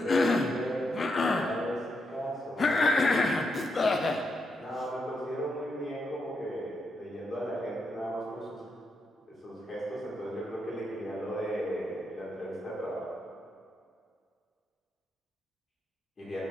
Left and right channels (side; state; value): both; normal; correlation 0.82